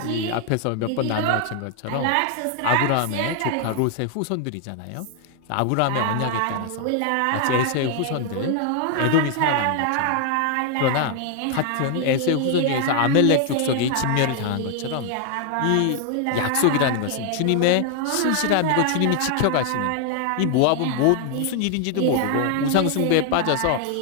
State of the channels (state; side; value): different; both; correlation 0.00